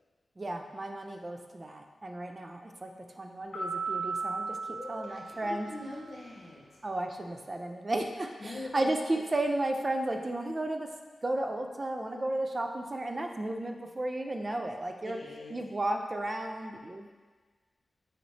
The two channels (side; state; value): both; normal; correlation 0.94